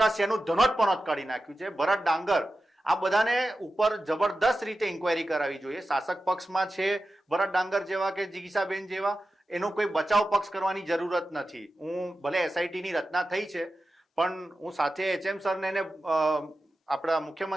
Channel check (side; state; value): both; normal; correlation 0.93